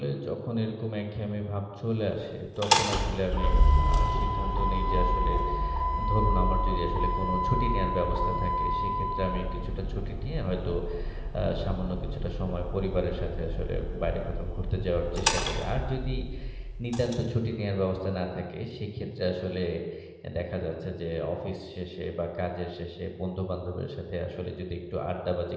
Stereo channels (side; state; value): both; identical; correlation 1.00